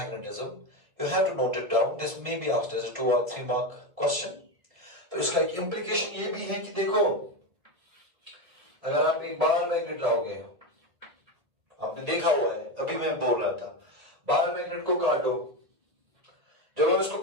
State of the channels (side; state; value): left; late; 1.5 ms